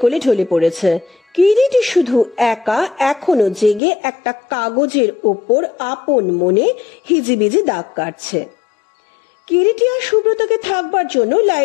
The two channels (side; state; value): right; drops out; at 3.8 s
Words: কোলে ঢলে পড়েছে। কিরিটি শুধু একা এখনো জেগে একটা কাগজের ওপর আপন মনে হিজিবিজি দাগ কাটছে। কিরিটি আর সুব্রতকে থাকবার জন্য